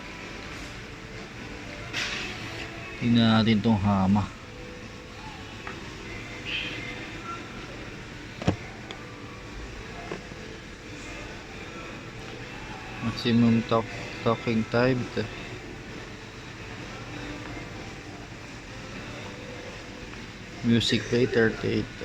Tingnan natin tong hama. Maximum talking time. Music play 38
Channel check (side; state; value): both; identical; correlation 1.00